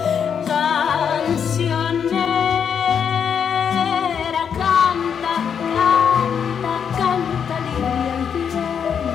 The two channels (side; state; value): right; quieter; 7.4 dB